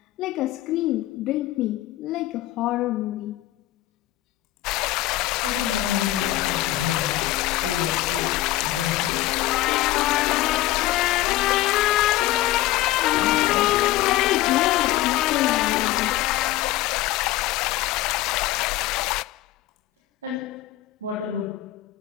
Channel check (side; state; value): right; quieter; 15.8 dB